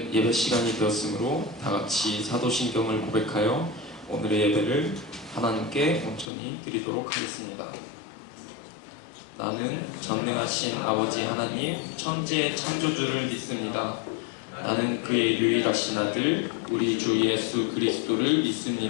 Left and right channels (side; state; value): right; drops out; at 6.3 s